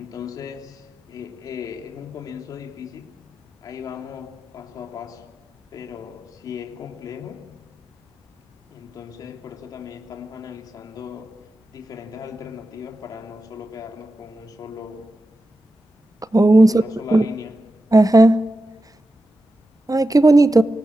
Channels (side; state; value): both; normal; correlation 0.91